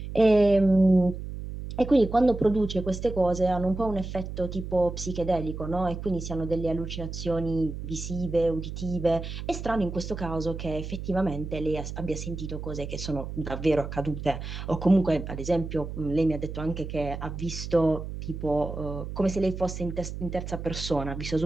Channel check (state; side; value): noise; right; hum, 8 dB below the sound